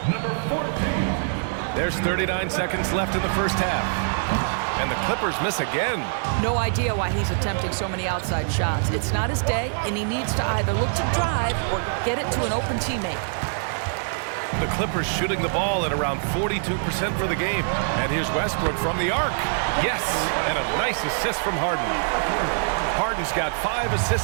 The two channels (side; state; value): left; silent; digital silence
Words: Number 14. There's 39 seconds left in the first half. And the Clippers miss again. No idea why he's attempting so many outside shots. It's not his day, and he needs to either look to drive or get it to an open teammate. The Clippers shooting the ball at around 42% for the game. And here's Westbrook from the arc. Yes, and a nice assist from Harden. Harden's got 5